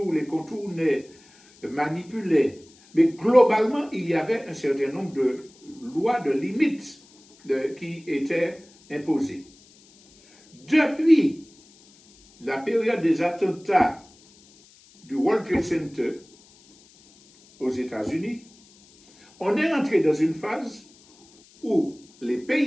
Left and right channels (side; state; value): left; noise; hiss, 28 dB below the sound